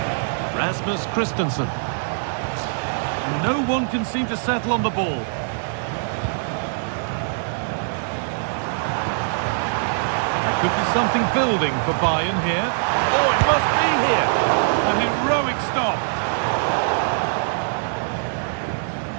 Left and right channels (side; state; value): left; silent; digital silence